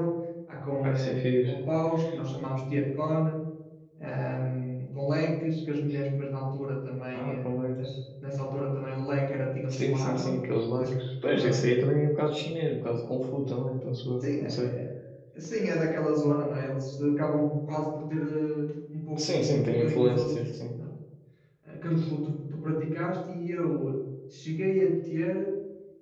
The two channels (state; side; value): identical; both; correlation 1.00